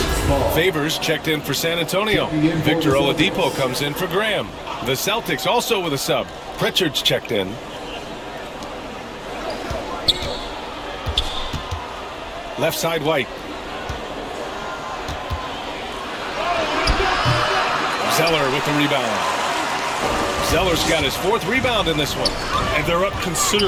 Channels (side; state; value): both; identical; correlation 1.00